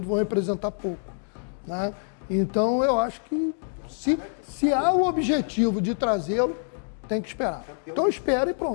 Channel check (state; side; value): silent; right; digital silence